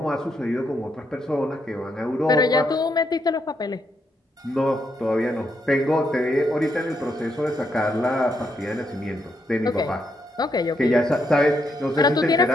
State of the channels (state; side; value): normal; both; correlation 0.78